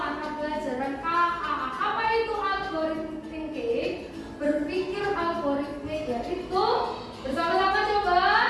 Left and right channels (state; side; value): identical; both; correlation 1.00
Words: pelajaran KA. Apa itu algorithm thinking? Berpikir algoritmik, yaitu bersama-sama coba